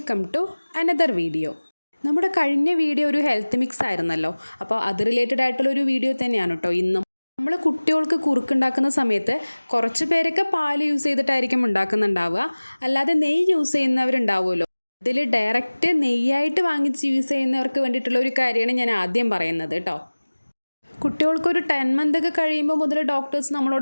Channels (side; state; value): both; inverted; correlation -1.00